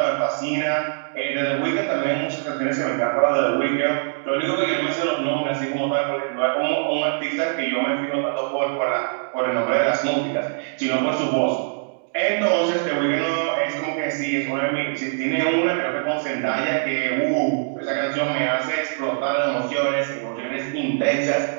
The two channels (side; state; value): left; silent; digital silence